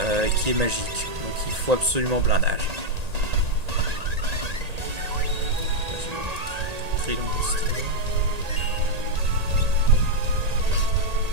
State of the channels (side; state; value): left; late; 1.8 ms